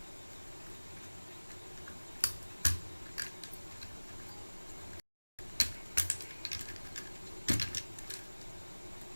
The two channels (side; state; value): both; inverted; correlation -1.00